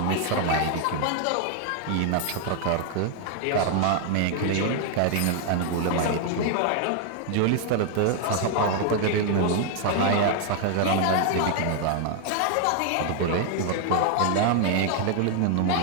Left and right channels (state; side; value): different; both; correlation 0.00